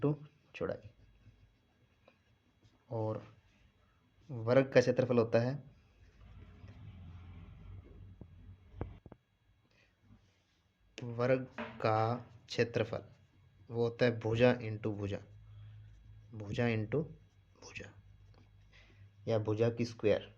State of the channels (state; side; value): identical; both; correlation 1.00